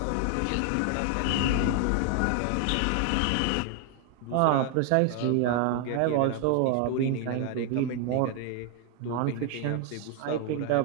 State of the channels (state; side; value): different; both; correlation 0.00